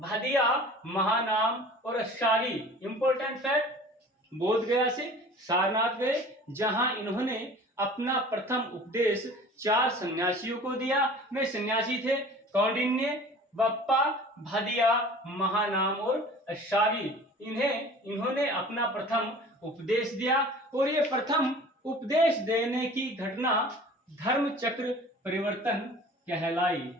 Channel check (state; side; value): normal; both; correlation 0.44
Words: महानाम और अष्टागी। इंपॉर्टेंट फैक्ट, बोध गया से सारनाथ गए जहां इन्होंने अपना प्रथम उपदेश 4 सन्यासियों को दिया। वे सन्यासी थे कौंडिन्य, बप्पा, भादिया, महानाम और अष्टागी। इन्होंने अपना प्रथम उपदेश दिया और ये प्रथम उपदेश देने की घटना धर्म चक्र परिवर्तन कहलाई,